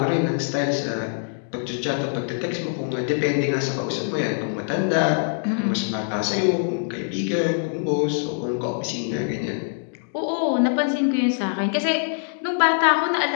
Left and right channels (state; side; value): silent; right; digital silence